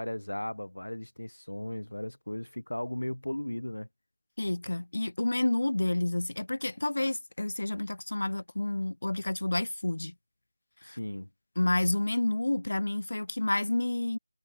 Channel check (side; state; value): both; inverted; correlation -1.00